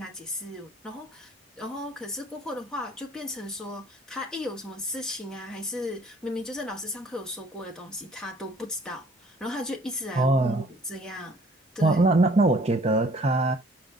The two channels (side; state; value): both; normal; correlation 0.56